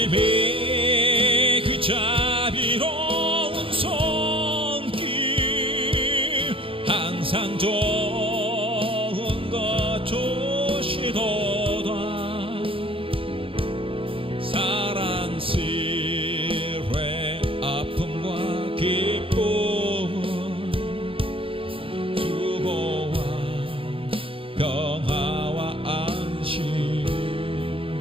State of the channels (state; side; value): late; left; 0.26 ms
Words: 그 자비로운 손길 항상 좋은 것 주시도다